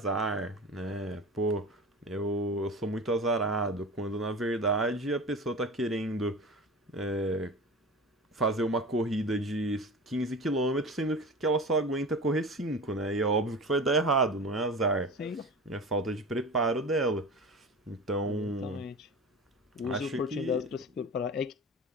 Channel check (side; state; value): both; normal; correlation 0.33